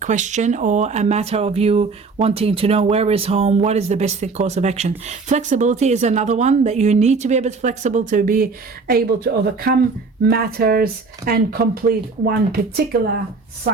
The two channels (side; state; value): left; quieter; 4.3 dB